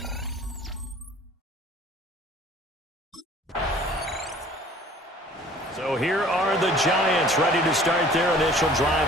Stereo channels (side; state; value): both; normal; correlation 0.50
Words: So here are the Giants ready to start their initial